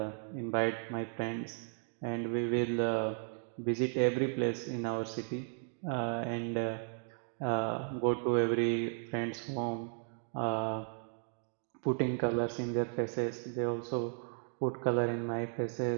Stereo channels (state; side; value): silent; left; 54 dB below the other